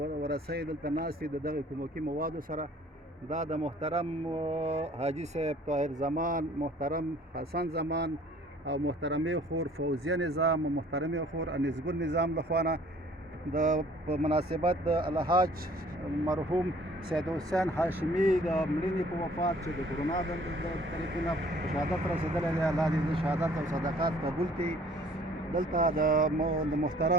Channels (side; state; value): both; normal; correlation 0.55